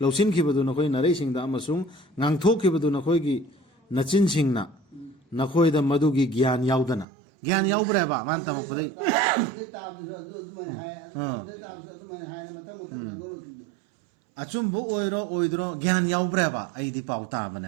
lausin khibadu nakhoi narai singda amasung ngang thok khibadu nakhoi gi nachin singna nakhoi da madu gi gyan yaudana gyan yaubra ba man tam pudai achumbu oiro oidro gyan yaubra ba ai di pauta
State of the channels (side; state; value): left; drops out; at 7.1 s